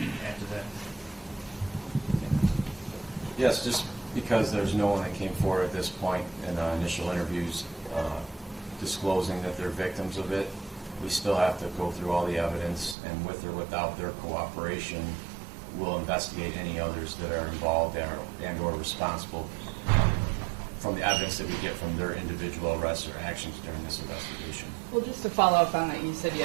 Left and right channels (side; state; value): left; drops out; at 13.0 s